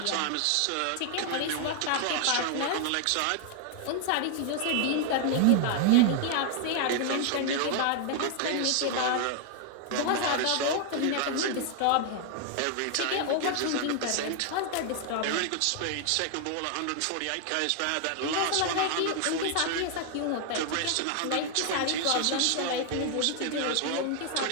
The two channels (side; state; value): both; different; correlation 0.00